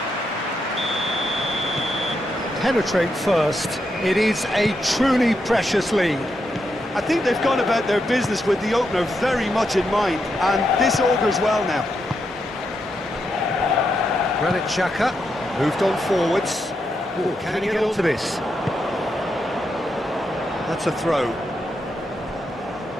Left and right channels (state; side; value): normal; both; correlation 0.82